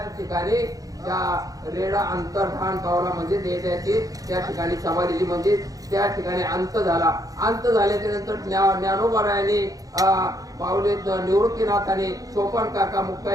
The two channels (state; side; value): late; left; 0.17 ms